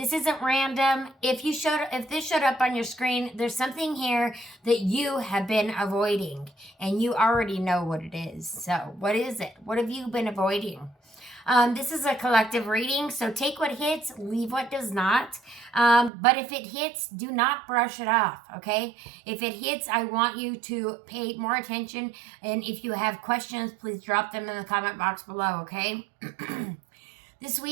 isn't random. If this showed up on your screen, there's something here that you have been avoiding, and you already know what it is. So, what is it? What have you been avoiding? This is a collective reading, so take what hits, leave what does not. But if it hits, do not brush it off, okay? If it hits, I want you to pay more attention. And if you have questions, please drop them in the comment box below, okay? This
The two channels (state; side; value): drops out; left; at 16.1 s